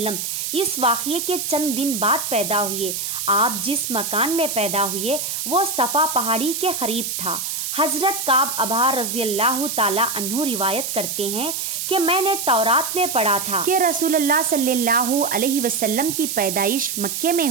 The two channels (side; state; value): right; noise; hiss, 3 dB below the sound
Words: اس واقعے کے چند دن بعد پیدا ہوئے۔ آپ جس مکان میں پیدا ہوئے وہ صفا پہاڑی کے قریب تھا۔ حضرت کعب ابا رضی اللہ تعالی عنہ روایت کرتے ہیں کہ میں نے تورات میں پڑھا تھا کہ رسول اللہ صلی اللہ علیہ وسلم کی پیدائش مکے میں